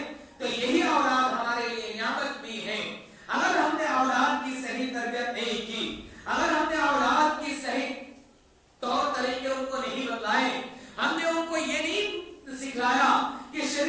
تو یہی اولاد ہمارے لیے نعمت بھی ہے. اگر ہم نے اولاد کی صحیح تربیت نہیں کی، اگر ہم نے اولاد کی صحیح طور طریقے ان کو نہیں بتلائے، ہم نے ان کو یہ نہیں سکھلایا کہ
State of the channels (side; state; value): both; identical; correlation 1.00